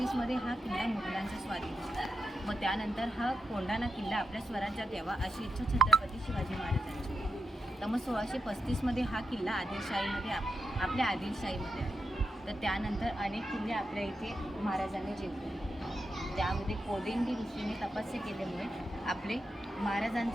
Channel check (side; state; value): both; normal; correlation 0.86